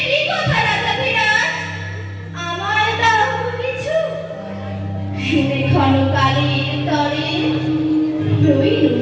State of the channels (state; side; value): identical; both; correlation 1.00